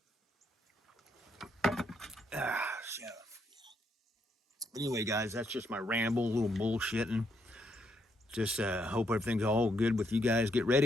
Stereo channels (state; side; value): normal; both; correlation 0.76